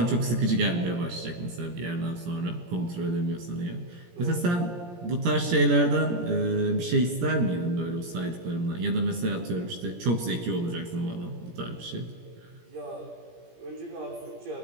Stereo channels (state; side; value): late; left; 17 ms